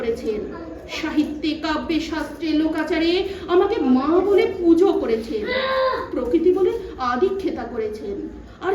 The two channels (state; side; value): identical; both; correlation 1.00